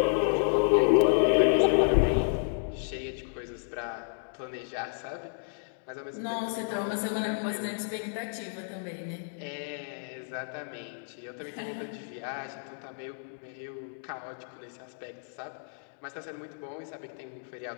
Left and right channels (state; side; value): silent; right; digital silence